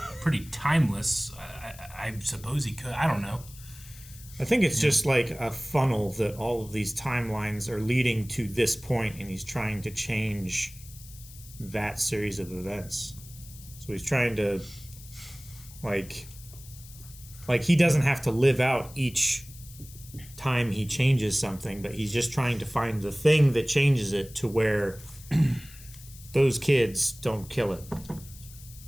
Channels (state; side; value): noise; left; hiss, 19 dB below the sound